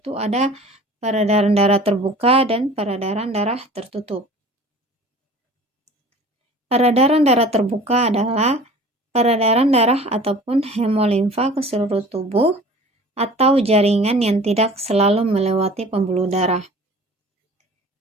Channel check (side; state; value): both; normal; correlation 0.44